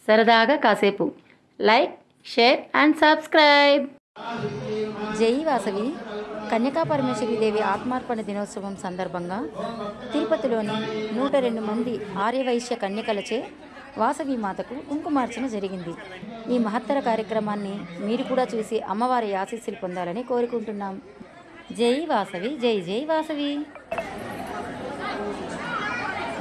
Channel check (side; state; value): both; identical; correlation 1.00